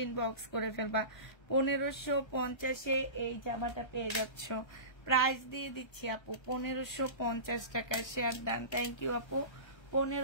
ইনবক্স করে ফেলবা। 1550-এ এই জামাটা পেয়ে যাচ্ছ। প্রাইস দিয়ে দিচ্ছি আপু 1550 টাকা। শেয়ার ডান, থ্যাংক ইউ আপু।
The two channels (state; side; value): late; right; 1.3 ms